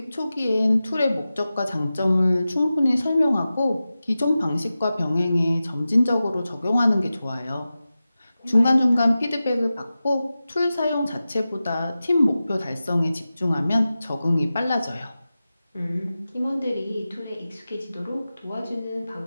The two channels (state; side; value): inverted; both; correlation -0.94